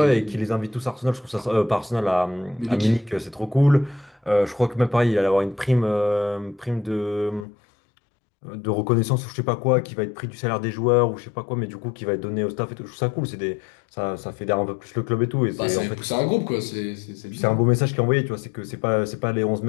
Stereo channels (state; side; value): drops out; right; at 7.5 s